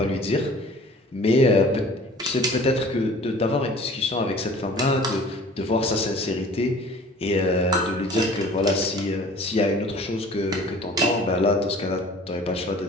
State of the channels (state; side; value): normal; both; correlation 0.47